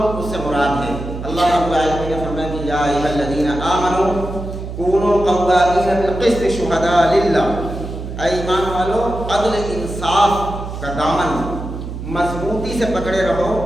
اس سے مراد ہیں۔ اللہ رب العالمین نے فرمایا کہ یا ایھا الذین آمنوا کونوا قوامین بالقسط شہداء للہ، اے ایمان والو عدل انصاف کا دامن مضبوطی سے پکڑے رہو،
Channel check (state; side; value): noise; right; hum, 8 dB below the sound